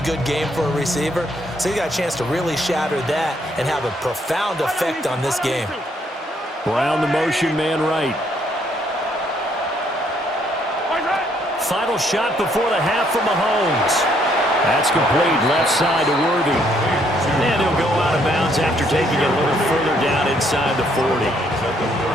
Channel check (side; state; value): both; normal; correlation 0.69